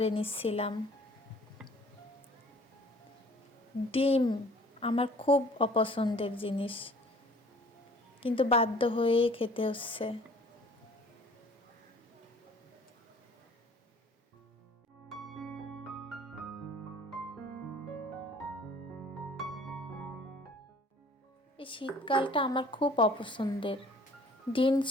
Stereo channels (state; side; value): normal; both; correlation 0.52